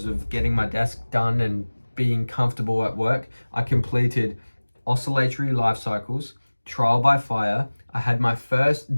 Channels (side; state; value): both; inverted; correlation -1.00